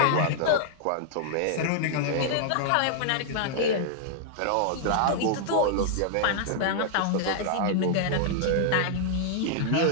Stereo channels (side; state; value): both; different; correlation -0.01